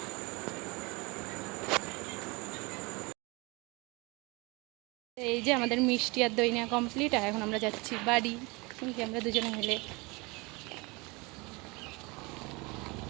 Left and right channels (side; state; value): left; quieter; 26.3 dB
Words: এই যে আমাদের মিষ্টি আর দই নেওয়া কমপ্লিট, আর এখন আমরা যাচ্ছি বাড়ি, আমরা দুজনে মিলে।